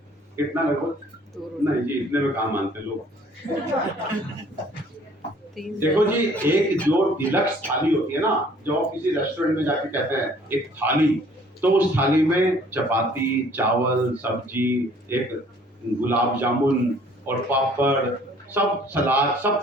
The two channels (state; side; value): normal; both; correlation 0.56